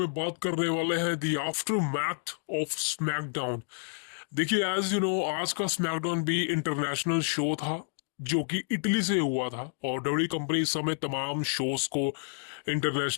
बात करने वाले हैं the aftermath of SmackDown. देखिए, एज यू नो, आज का स्मैकडाउन भी इंटरनेशनल शो था जो कि इटली से हुआ था, और डब्ल्यू कंपनी इस समय तमाम शोज को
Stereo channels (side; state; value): right; silent; digital silence